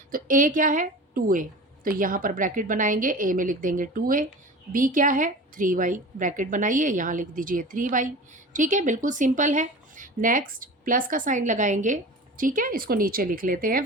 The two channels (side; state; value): both; normal; correlation 0.36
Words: तो a क्या है? 2a, तो यहाँ पर ब्रैकेट बनाएंगे, a में लिख देंगे 2a। b क्या है? 3y, ब्रैकेट बनाइए यहाँ लिख दीजिए 3y। ठीक है, बिल्कुल सिंपल है। नेक्स्ट प्लस का साइन लगाएंगे। ठीक है, इसको नीचे लिख लेते हैं।